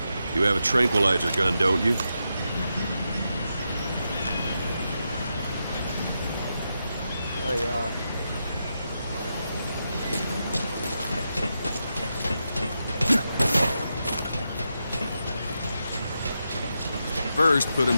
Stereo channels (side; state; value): both; inverted; correlation -0.86